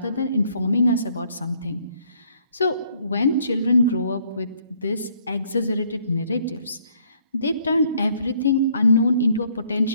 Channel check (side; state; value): both; inverted; correlation -0.65